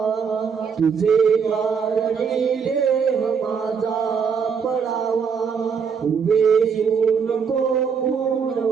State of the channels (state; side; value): quieter; left; 6.3 dB